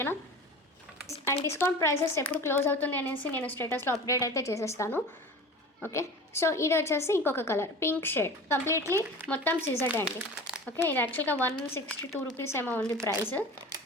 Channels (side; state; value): both; normal; correlation 0.36